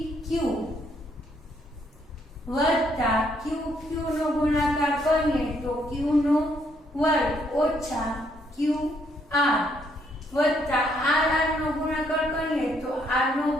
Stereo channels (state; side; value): normal; both; correlation 0.71